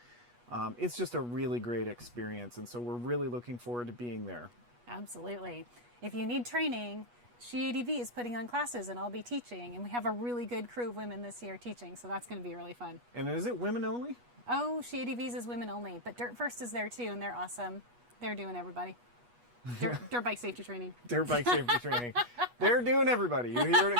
It's just a really great experience, and so we're really looking forward to being there. Absolutely. If you need training, SheADV is putting on classes, and I'll be teaching, and we have a really good crew of women this year teaching, so that's going to be really fun. And is it women only? Oh, SheADV's is women only, but Dirt First is there too, and they're awesome. They're doing everybody. Dirt bike safety training. Dirt bike safety training. They're doing everybody. You hear it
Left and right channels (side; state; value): left; late; 8.3 ms